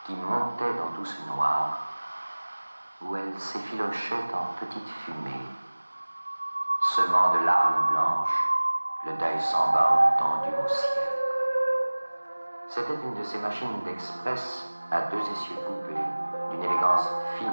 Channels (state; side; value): inverted; both; correlation -1.00